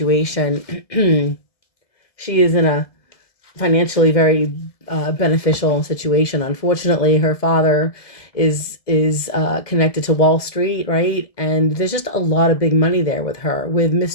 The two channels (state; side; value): late; right; 1.7 ms